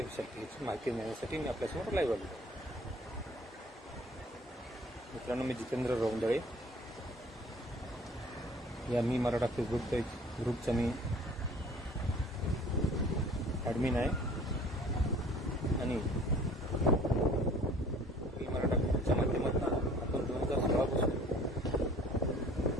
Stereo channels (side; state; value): both; normal; correlation 0.52